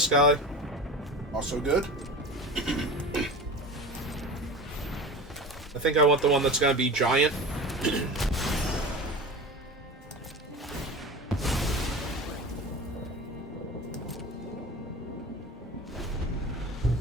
guy. Also good. I think I want the one that's going to be giant.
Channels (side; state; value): both; normal; correlation 0.32